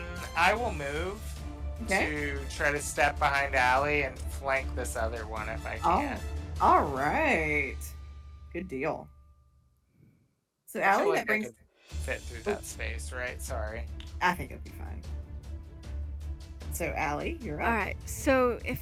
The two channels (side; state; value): both; identical; correlation 1.00